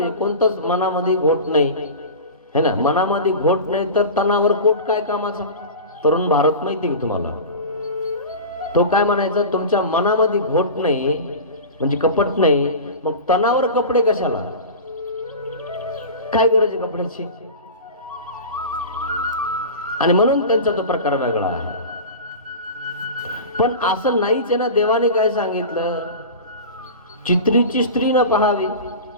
आहे. कोणतंच मनामध्ये घोट नाही है ना. मनामध्ये घोट नाही तर तणावर पोट काय कामाचा. तरुण भारत माहिती का तुम्हाला, तो काय म्हणायचा, तुमच्या मनामध्ये घोट नाही म्हणजे कपट नाही, मग तणावर कपडे कशाला, काय गरज आहे कपड्याची. आणि म्हणून त्यांचा तो प्रकार वेगळा आहे. पण असं नाहीच आहे ना. देवाने काय सांगितलं, चित्रीची स्त्री न पाहावी.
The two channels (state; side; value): inverted; both; correlation -0.31